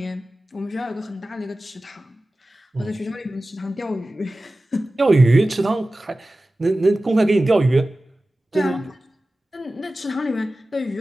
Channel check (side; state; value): both; normal; correlation 0.96